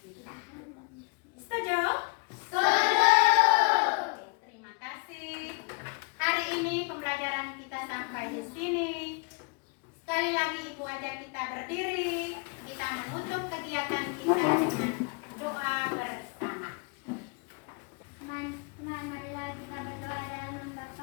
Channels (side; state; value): right; quieter; 32.6 dB